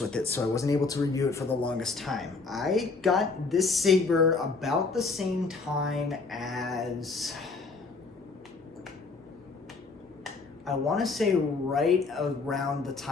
it, so I wasn't able to review it for the longest time. I got this saber about the same time as, I want to say right around the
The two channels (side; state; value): right; quieter; 4.1 dB